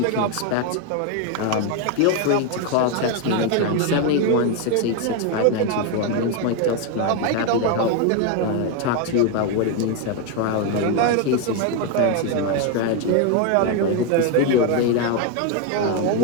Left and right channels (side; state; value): both; different; correlation 0.01